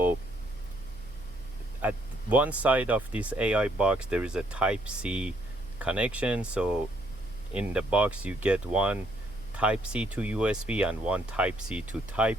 at one side of this AI box there is a Type-C connection. So in the box you get one Type-C to USB and one Type-C to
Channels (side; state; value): right; noise; hum, 17 dB below the sound